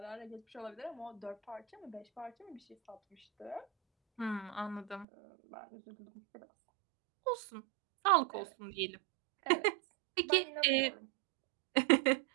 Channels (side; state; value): left; drops out; at 5.1 s